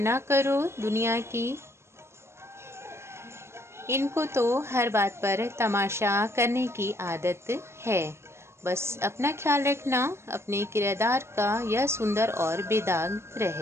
करो दुनिया की, इनको तो हर बात पर तमाशा करने की आदत है। बस अपना ख्याल रखना, अपने किरदार का यह सुंदर और बेदाग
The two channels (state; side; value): late; left; 0.13 ms